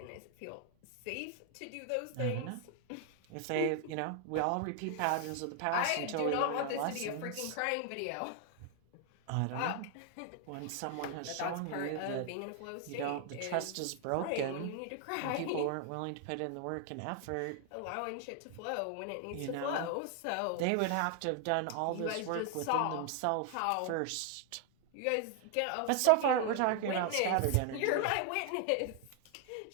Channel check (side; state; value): both; different; correlation 0.00